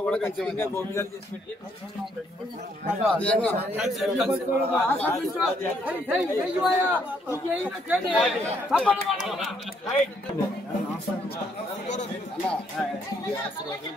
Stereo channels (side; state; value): both; normal; correlation 0.71